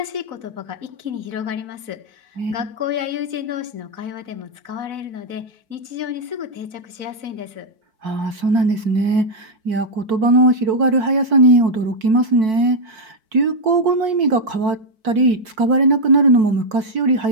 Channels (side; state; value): left; late; 4.5 ms